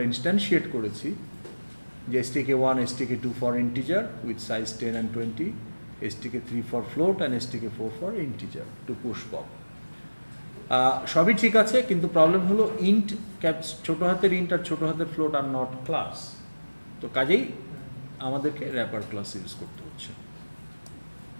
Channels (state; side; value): inverted; both; correlation -1.00